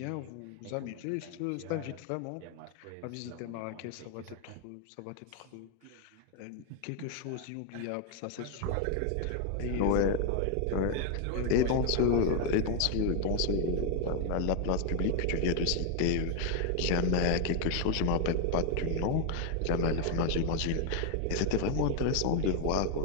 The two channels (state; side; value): different; both; correlation 0.01